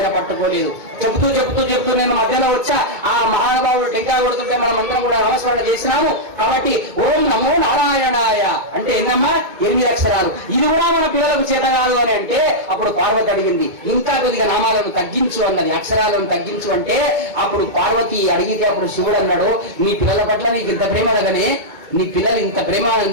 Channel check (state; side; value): late; left; 2.2 ms